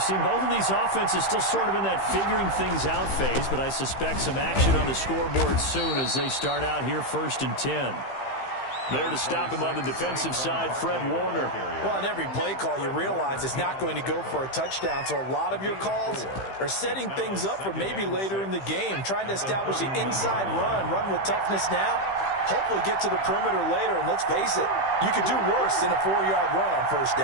seen both of these offenses still sort of in that figuring things out phase, but I suspect some action on the scoreboard soon as they start out here 1st and 10. There to stop him on the defensive side, Fred Warner. Well, on every play call, you realize it's not going to go for a touchdown, so a lot of your calls are setting things up for maybe later in the game, trying to establish the inside run with toughness now, hopefully get to the perimeter later, and let's face it, you could do worse than a 4-yard run on 1st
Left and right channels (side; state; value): right; late; 15 ms